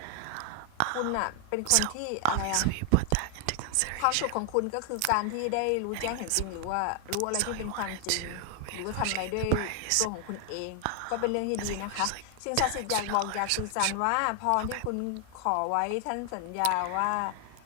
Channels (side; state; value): both; different; correlation 0.00